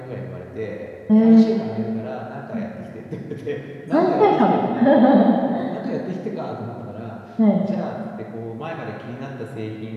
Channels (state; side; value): identical; both; correlation 1.00